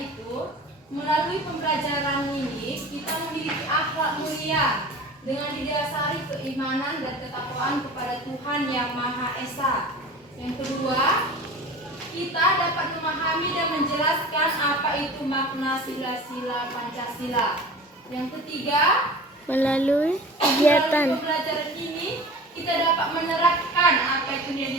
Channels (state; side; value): normal; both; correlation 0.38